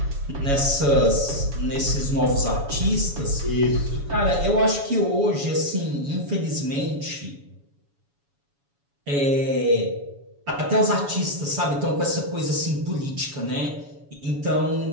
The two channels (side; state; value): left; late; 7.1 ms